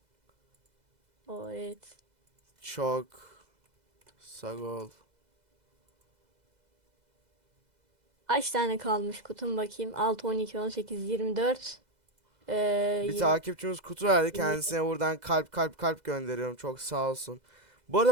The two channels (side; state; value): left; late; 2.0 ms